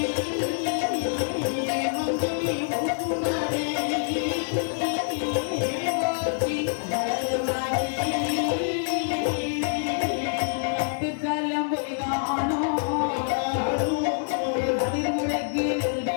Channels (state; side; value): silent; right; digital silence